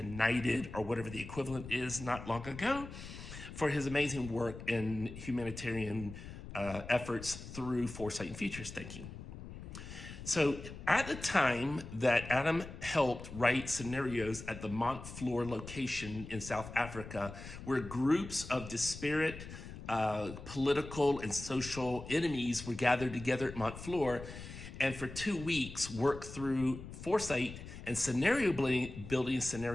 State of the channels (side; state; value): left; noise; rumble, 12 dB below the sound